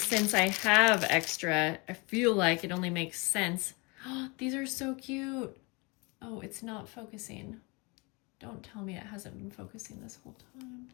I have extra, I feel like it only makes sense. Oh, these are so cute. Oh, it's not focusing. Don't tell me it hasn't been focusing this whole time.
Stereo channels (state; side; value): quieter; right; 28.4 dB